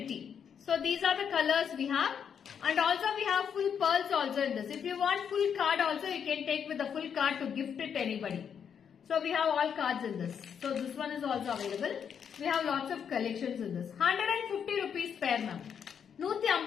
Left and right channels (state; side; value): quieter; right; 7.6 dB